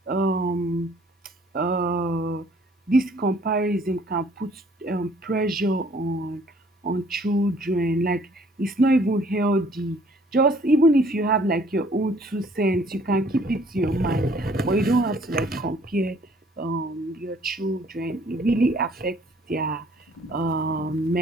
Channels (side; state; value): both; normal; correlation 0.59